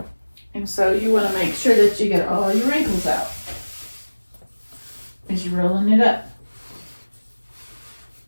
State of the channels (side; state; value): both; inverted; correlation -1.00